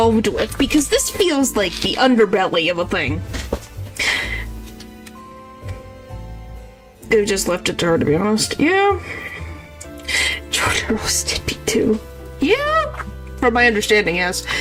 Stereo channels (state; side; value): identical; both; correlation 1.00